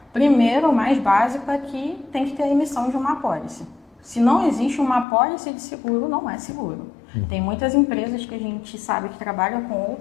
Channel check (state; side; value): drops out; right; at 5.1 s